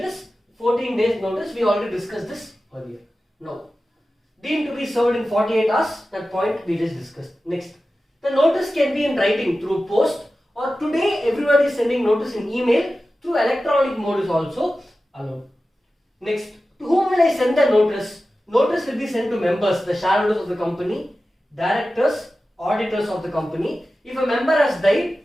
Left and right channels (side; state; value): both; normal; correlation 0.94